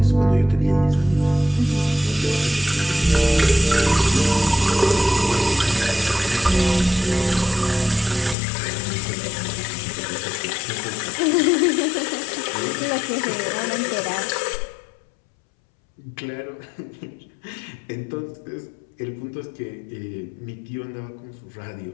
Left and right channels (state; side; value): drops out; right; at 8.3 s